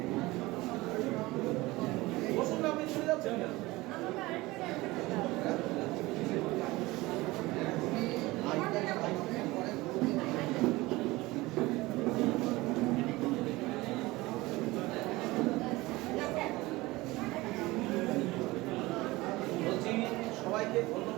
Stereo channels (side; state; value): left; quieter; 20.5 dB